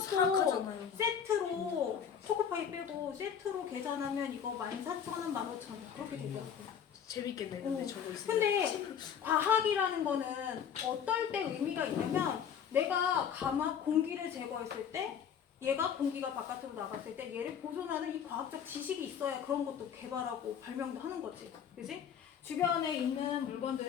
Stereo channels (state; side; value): quieter; right; 8.0 dB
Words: 세트로 초코파이 빼고 세트로 계산하면 이거 14,000원, 15,000원 그렇게 되더라고. 재밌겠네. 근데 저거 있으면. 근데 과학이라는 거는 어떨 때 의미가 있냐면 내가 공기를 제거했을 때 얘가 공기가 바깥으로 나갔을 때 얘를 보존하는 이 과학적 지식이 있어야 그런 것도 개발하고 발명도 하는 거지. 그지? 주변에 있는